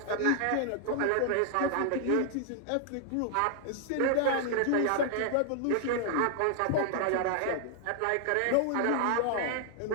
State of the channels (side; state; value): both; different; correlation 0.00